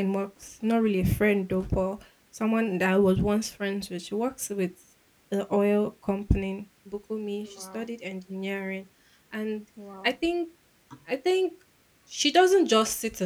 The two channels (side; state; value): both; identical; correlation 1.00